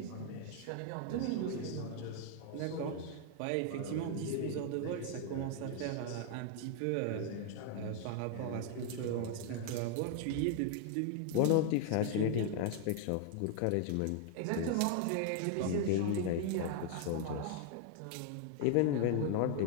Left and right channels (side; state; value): both; different; correlation 0.00